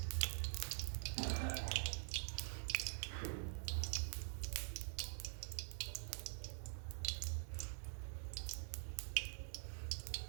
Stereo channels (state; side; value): silent; left; digital silence